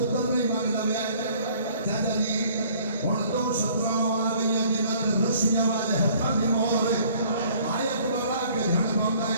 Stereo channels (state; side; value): inverted; both; correlation -0.56